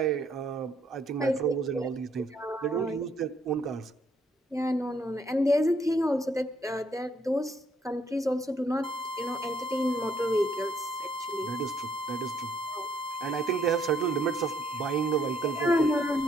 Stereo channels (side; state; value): both; normal; correlation 0.69